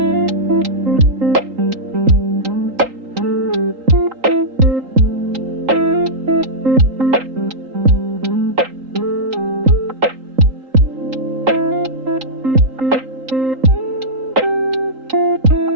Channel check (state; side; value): late; left; 3.8 ms